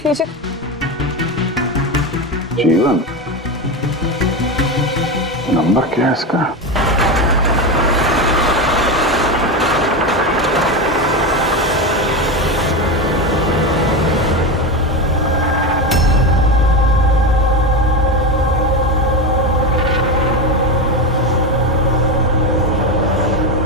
लीजिए। जीवन? नंबर क्या है इसका?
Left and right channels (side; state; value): both; normal; correlation 0.17